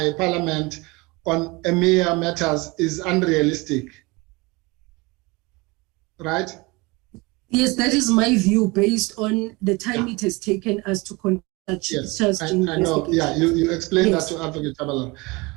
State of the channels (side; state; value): left; quieter; 24.9 dB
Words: Parliament on EMEA matters is unrealistic, right? Yes, that is my view based on the time it has taken us to conduct yes, I know. Yeah, you explained that to Advocate Chabalala.